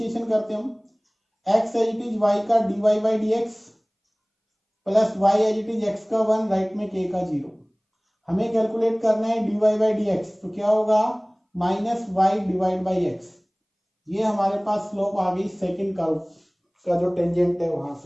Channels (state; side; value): identical; both; correlation 1.00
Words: करते हम, x as it is y का dy by dx plus y as it is x का 1, राइट में k का 0। हमें कैलकुलेट करना है dy बाई dx, तो क्या होगा -y डिवाइड बाई x। ये हमारे पास स्लोप आ गई सेकंड कर्व का जो टेंजेंट है वहां